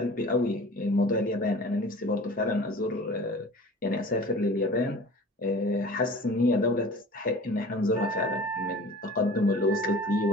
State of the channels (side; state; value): both; normal; correlation 0.42